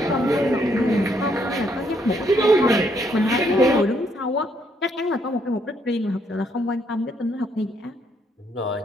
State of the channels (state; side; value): normal; both; correlation 0.72